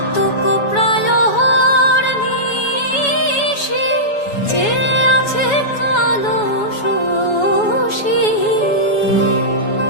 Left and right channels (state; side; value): late; right; 7.1 ms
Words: প্রায় নিশি চেয়ে আছে কালো শশী।